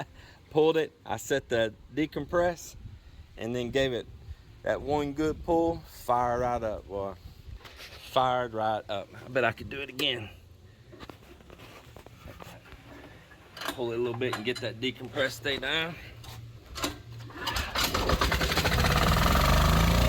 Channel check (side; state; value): both; identical; correlation 1.00